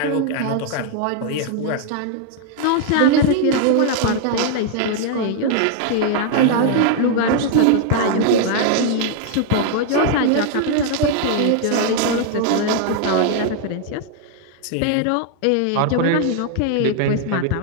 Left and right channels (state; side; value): different; both; correlation 0.00